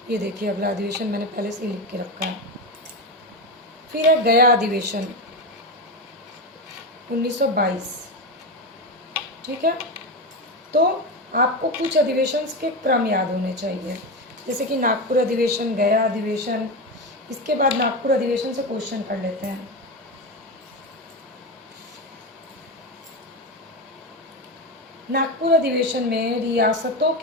ये देखिए अगला अधिवेशन मैंने पहले से लिख के रखा है। फिर है गया अधिवेशन 1922। ठीक है, तो आपको कुछ अधिवेशन के क्रम याद होने चाहिए, जैसे कि नागपुर अधिवेशन, गया अधिवेशन। इसके बाद नागपुर अधिवेशन से क्वेश्चन कर लेते हैं। नागपुर अधिवेशन में रियासतों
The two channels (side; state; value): both; normal; correlation 0.16